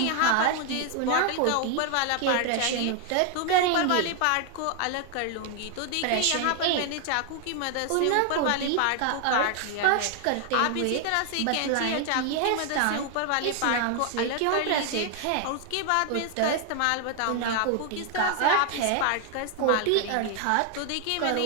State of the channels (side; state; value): both; different; correlation 0.00